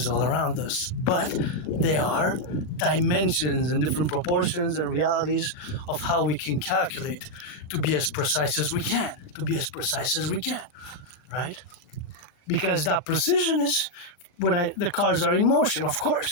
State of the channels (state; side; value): late; right; 38 ms